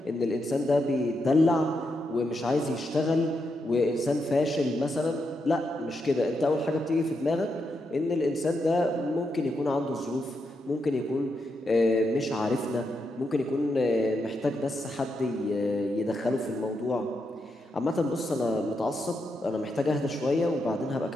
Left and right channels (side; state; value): both; normal; correlation 0.83